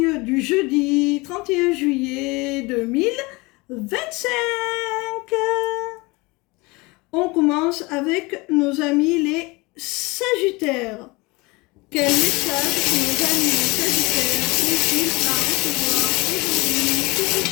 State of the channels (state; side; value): quieter; right; 24.8 dB